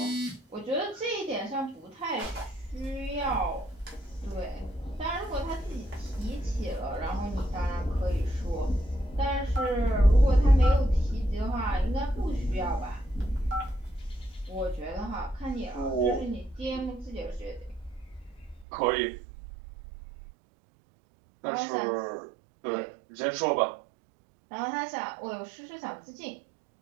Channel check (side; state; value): left; drops out; at 18.7 s